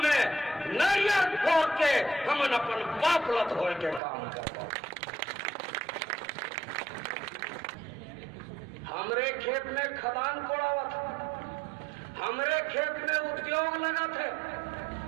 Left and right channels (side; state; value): left; drops out; at 4.0 s